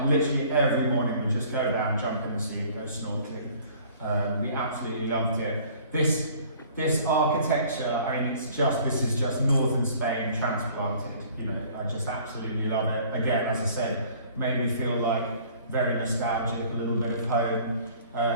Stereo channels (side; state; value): both; inverted; correlation -0.53